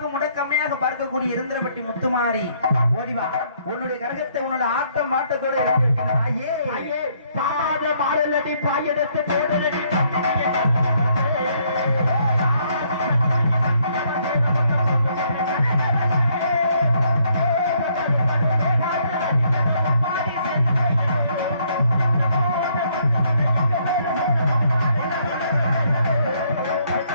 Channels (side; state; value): both; inverted; correlation -0.69